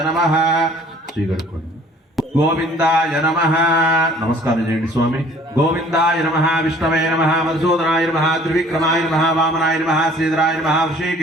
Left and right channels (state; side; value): normal; both; correlation 0.54